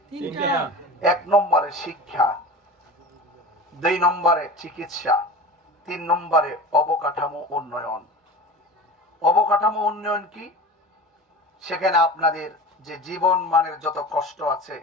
1 নম্বরে শিক্ষা, 2 নম্বরে চিকিৎসা, 3 নম্বরে অবকাঠামো উন্নয়ন। অবকাঠামো উন্নয়ন কি? সেখানে আপনাদের যে জীবন মানের যত কষ্ট আছে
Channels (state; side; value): normal; both; correlation 0.34